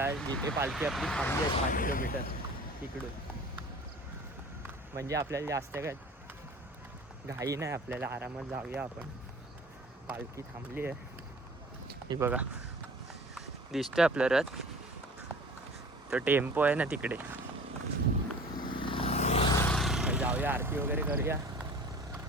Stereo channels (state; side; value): normal; both; correlation 0.44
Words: जिथे पालखी आपली थांबली आहे 6 किलोमीटर तिकडून. म्हणजे आपल्याला जास्त काय घाई नाही, आपल्याला आरामात जाऊया आपण. पालखी थांबली आहे, ही बघा दिसतोय आपलं रथ, तो टेम्पो आहे ना तिकडे. जाऊया आरती वगैरे करूया